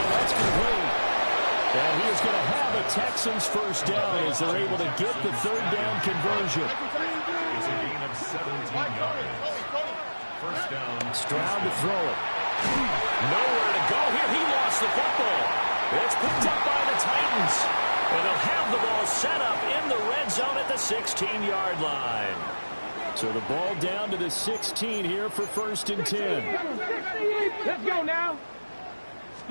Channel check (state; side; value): inverted; both; correlation -1.00